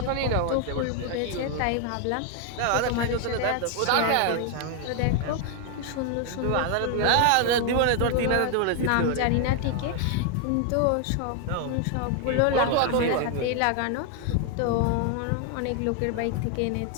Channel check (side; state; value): both; different; correlation 0.00